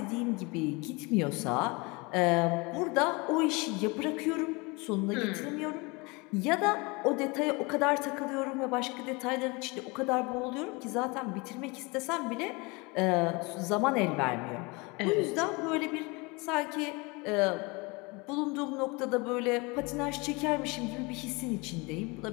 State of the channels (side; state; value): right; quieter; 27.0 dB